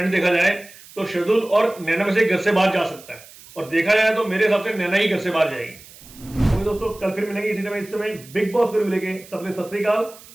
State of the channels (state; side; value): noise; right; hiss, 21 dB below the sound